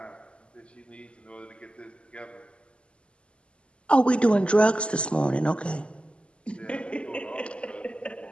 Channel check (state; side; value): late; right; 0.054 ms